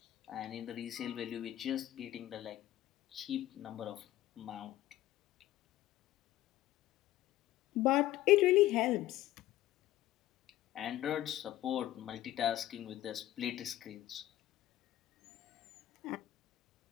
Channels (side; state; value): right; quieter; 14.5 dB